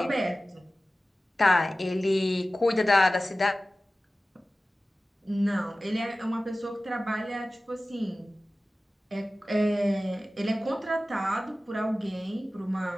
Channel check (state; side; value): normal; both; correlation 0.96